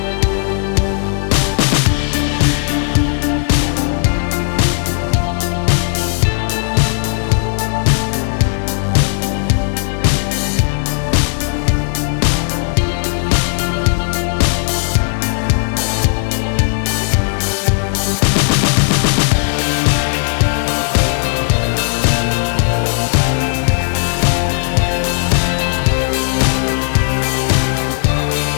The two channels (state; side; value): silent; right; 69 dB below the other